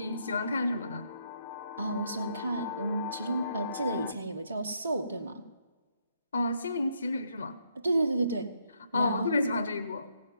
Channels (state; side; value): inverted; both; correlation -0.74